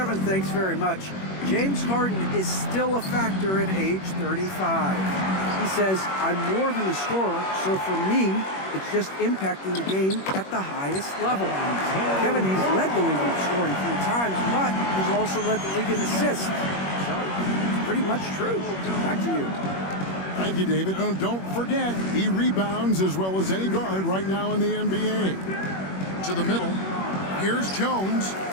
thanks very much. James Harden is still a factor at age 35. He says, I'm more than a scorer, so for me, it's just impacting the game at the highest level. Kevin, he's led the league in scoring 3 times, but he's also led the league in assists. So, it's pretty much true. Back to you. Thank you, David. Oh, don't forget, he rebounds as well as any guard right now in the NBA. To the middle. Here's Jones.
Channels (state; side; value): late; right; 21 ms